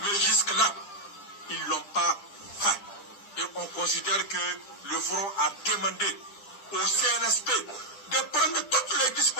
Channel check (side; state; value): right; late; 10 ms